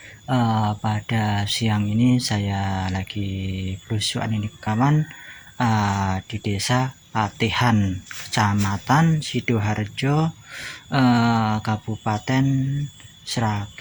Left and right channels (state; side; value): identical; both; correlation 1.00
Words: pada siang ini saya lagi belusukan ini kawan di desa Patihan, Kecamatan Sidoarjo, Kabupaten